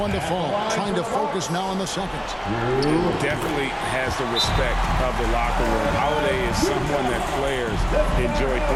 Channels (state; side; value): identical; both; correlation 1.00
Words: to fall. Trying to focus now on the second. Definitely has the respect of the locker room. Holiday is someone that players enjoy